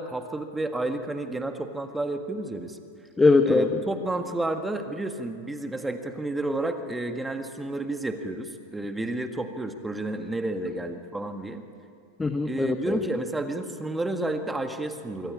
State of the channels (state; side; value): normal; both; correlation 0.77